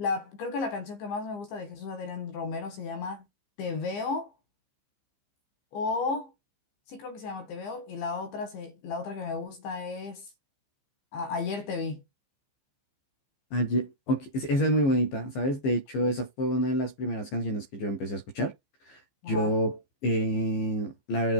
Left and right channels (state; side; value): late; right; 15 ms